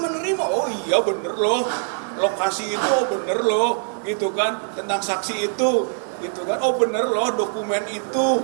oh iya bener loh, lokasi itu oh bener loh, gitu kan, tentang saksi itu, gitu kan, oh bener loh dokumen itu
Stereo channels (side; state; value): left; silent; digital silence